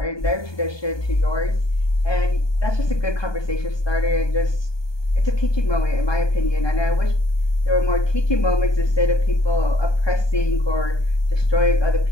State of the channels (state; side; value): late; right; 1.2 ms